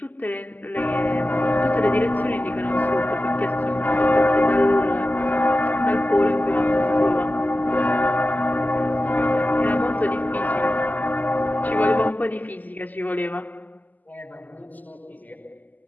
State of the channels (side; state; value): right; late; 0.082 ms